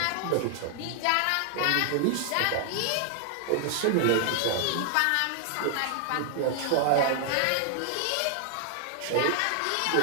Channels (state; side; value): different; both; correlation 0.00